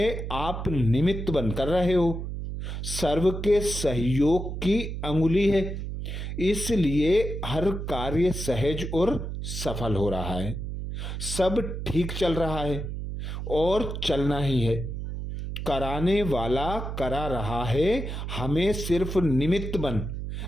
आप निमित्त बनकर रहे हो, सर्व के सहयोग की अंगुली है, इसलिए हर कार्य सहज और सफल हो रहा है, सब ठीक चल रहा है और चलना ही है। कराने वाला करा रहा है, हमें सिर्फ निमित्त बन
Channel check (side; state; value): right; noise; hum, 5 dB below the sound